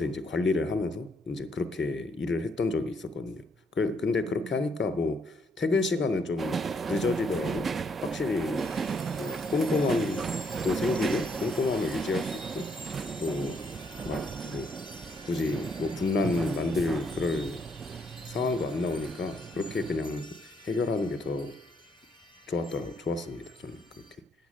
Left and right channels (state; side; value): normal; both; correlation 0.71